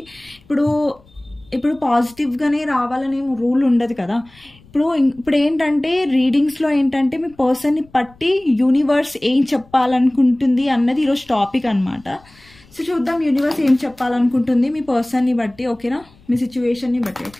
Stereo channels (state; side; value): noise; left; rumble, 28 dB below the sound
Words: ఇప్పుడు పాజిటివ్గానే రావాలని రూల్ ఉండదు కదా. ఇప్పుడు ఏంటంటే, రీడింగ్స్లో ఏంటంటే మీ పర్సన్ని పట్టి యూనివర్స్ ఏం చెప్పాలనుకుంటుంది అన్నది ఈరోజు టాపిక్ అనమాట. సో చూద్దాం యూనివర్స్ ఏం చెప్పాలనుకుంటుంది మీ పర్సన్ని బట్టి, ఓకేనా? మీ సిచ్యువేషన్ని బట్టి,